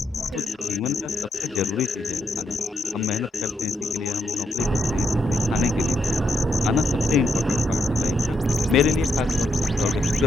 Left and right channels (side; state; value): both; normal; correlation 0.79